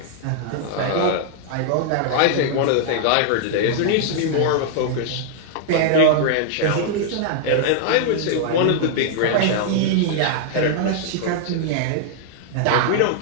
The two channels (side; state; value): both; different; correlation -0.01